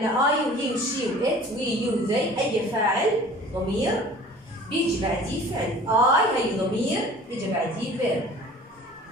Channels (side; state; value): both; normal; correlation 0.46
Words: I وهي وشي وإت وي يو ذي. أي فاعل ضمير بيجي بعديه فعل. I هي ضمير بيجي بعديه verb.